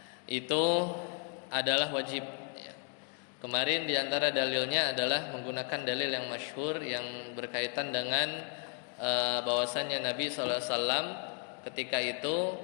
itu adalah wajib ya. Kemarin di antara dalilnya adalah menggunakan dalil yang masyhur yang berkaitan dengan bahwasanya Nabi SAW ketika itu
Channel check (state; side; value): quieter; right; 39.0 dB